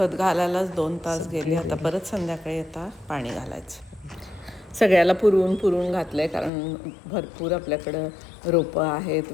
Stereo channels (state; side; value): drops out; right; at 6.5 s